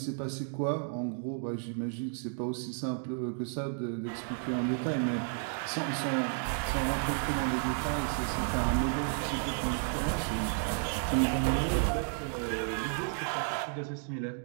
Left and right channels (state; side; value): silent; left; 56 dB below the other